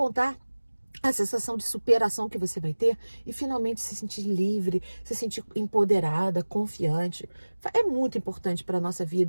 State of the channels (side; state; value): both; inverted; correlation -1.00